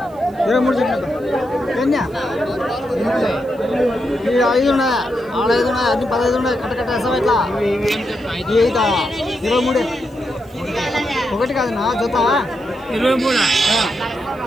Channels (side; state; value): right; noise; hiss, 30 dB below the sound